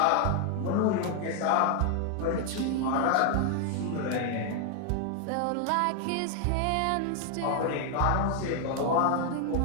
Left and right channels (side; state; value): both; different; correlation 0.00